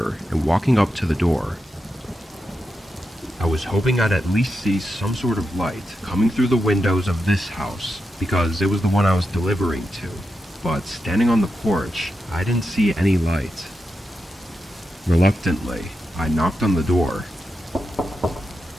and walking up to the door. I was hoping I'd at least see some sort of light coming through the windows of this house, because it was the one I was delivering to. But standing on the porch, I didn't see any light. Reluctantly, I knocked on the door.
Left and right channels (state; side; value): normal; both; correlation 0.88